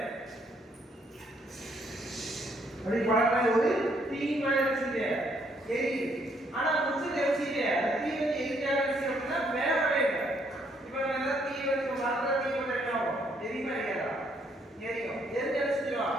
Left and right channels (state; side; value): normal; both; correlation 0.70